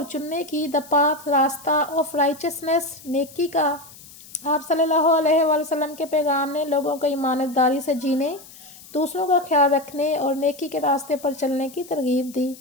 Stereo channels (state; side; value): noise; left; hiss, 20 dB below the sound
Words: چننے کی، دا پاتھ راستہ، آف رائچسنس نیکی کا۔ آپ صلی اللہ علیہ وآلہ وسلم کے پیغام نے لوگوں کو ایمانت داری سے جینے، دوسروں کا خیال رکھنے اور نیکی کے راستے پر چلنے کی ترغیب دی۔